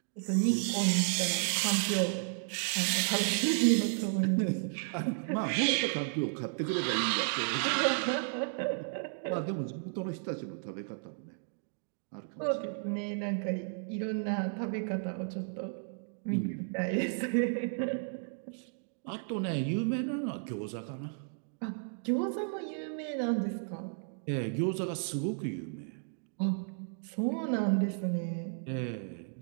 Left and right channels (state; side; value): silent; left; digital silence